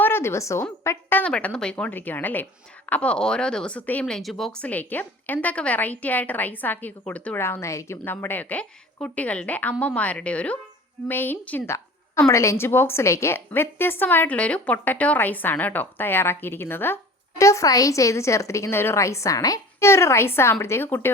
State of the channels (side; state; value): both; normal; correlation 0.42